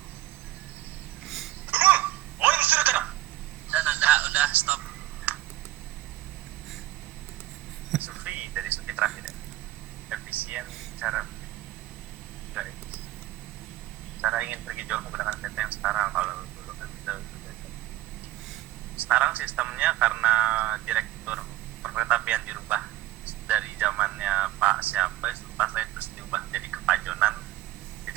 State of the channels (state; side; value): quieter; left; 16.0 dB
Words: 応援するから。 udah stop. Sufi dari Sufi terakhir ya. Efisien pergi jauh menggunakan kereta yang sekarang. Kalau dulu kan kita sekarang sistemnya karena direktur perkeretaapian dirubah dari zamannya Pak siapa itu pas lain terus diubah jadi kepajonan.